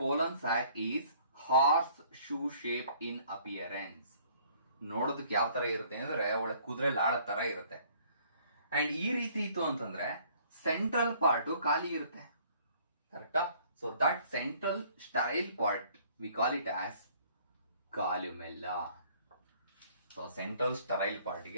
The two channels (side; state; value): both; inverted; correlation -0.58